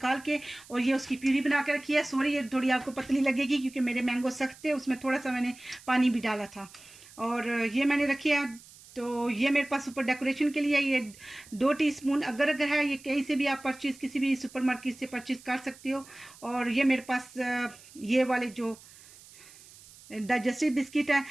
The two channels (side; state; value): right; noise; hiss, 22 dB below the sound